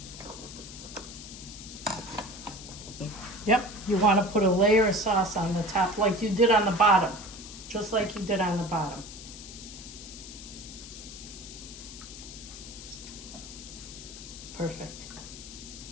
Yep, you want to put a layer of sauce on the top like you did on the bottom. Just like you did on the bottom. Perfect.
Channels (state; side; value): noise; left; hiss, 13 dB below the sound